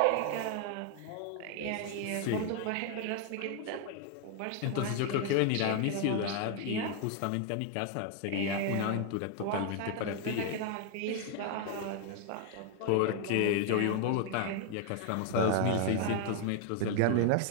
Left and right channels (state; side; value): different; both; correlation 0.00